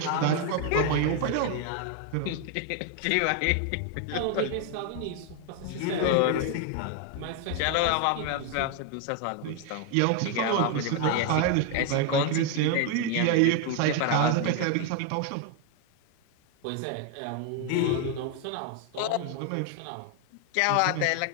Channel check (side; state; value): both; different; correlation 0.01